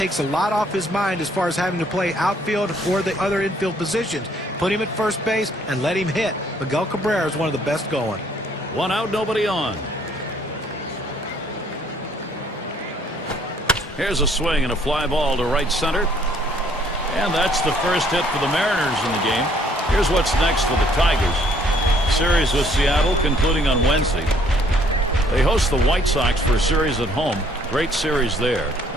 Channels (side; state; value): both; normal; correlation 0.63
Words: a lot off his mind as far as having to play outfield or the other infield positions. Put him at first base and let him hit. Miguel Cabrera is one of the best going. 1 out, nobody on. Here's a swing and a fly ball to right center. And that's the first hit for the Mariners in the game. Here's what's next for the Tigers. Series with Seattle concluding on Wednesday. They host the White Sox for a series at home. Great series there.